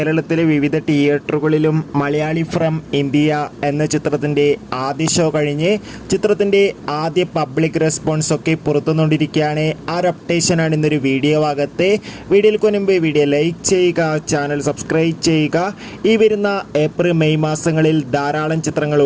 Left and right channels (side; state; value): both; identical; correlation 1.00